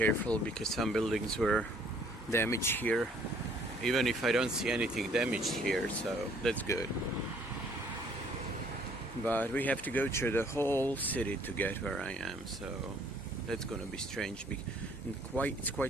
because some buildings were damaged here, even if I don't see anything damaged here, so that's good. But we have to go through the whole city to get where I am, so that's gonna be strange. And it's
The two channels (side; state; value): both; normal; correlation 0.61